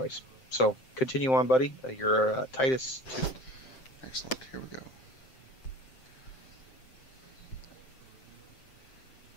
so continue on, buddy. You're Titus 2. Excellent. Here we go.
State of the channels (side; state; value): right; late; 7.6 ms